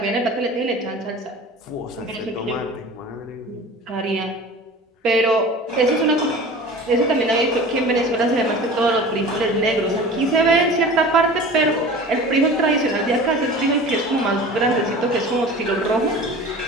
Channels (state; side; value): normal; both; correlation 0.39